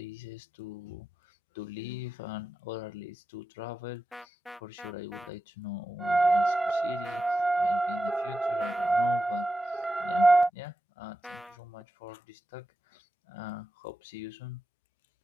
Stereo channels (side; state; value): both; normal; correlation 0.91